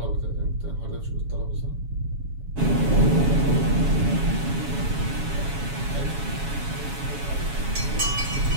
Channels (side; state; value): left; late; 7.2 ms